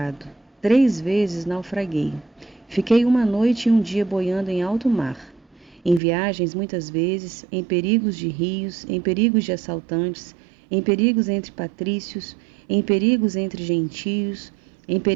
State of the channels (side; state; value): left; drops out; at 6.0 s